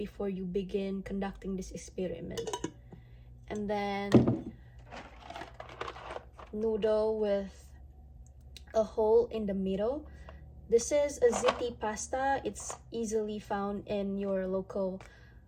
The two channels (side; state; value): both; identical; correlation 1.00